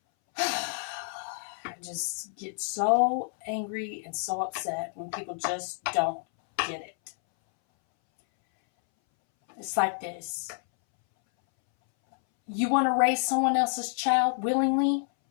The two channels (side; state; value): right; silent; 59 dB below the other